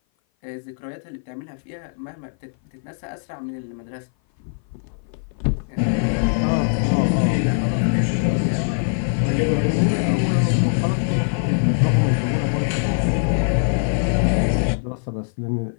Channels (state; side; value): silent; right; 57 dB below the other